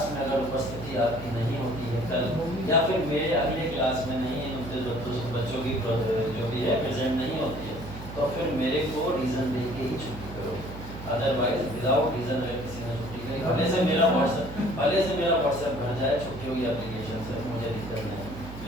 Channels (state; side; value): noise; right; hum, 12 dB below the sound